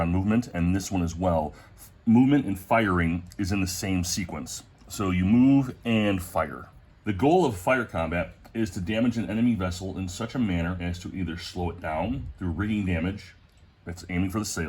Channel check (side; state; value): both; identical; correlation 1.00